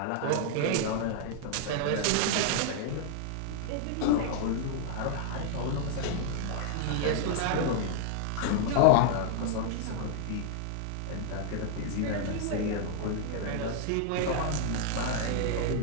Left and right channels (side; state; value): both; different; correlation 0.00